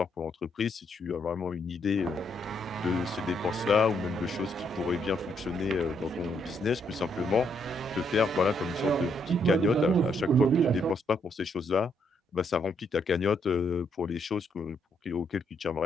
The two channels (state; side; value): normal; both; correlation 0.74